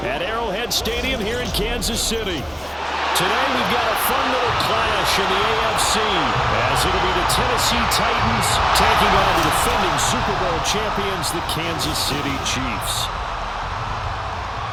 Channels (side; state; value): both; identical; correlation 1.00